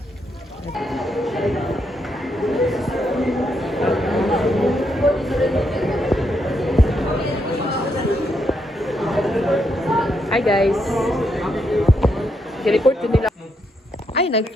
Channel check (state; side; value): normal; both; correlation 0.79